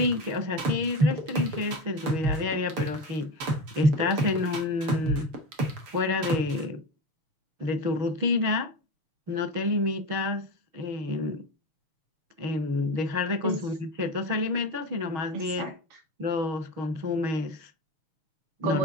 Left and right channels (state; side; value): late; left; 6.8 ms